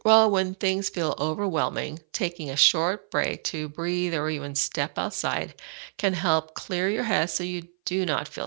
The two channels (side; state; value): left; silent; 58 dB below the other